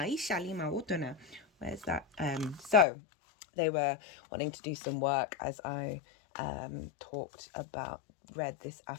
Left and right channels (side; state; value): right; drops out; at 2.9 s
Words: that? So they were wanting to do some work as I read this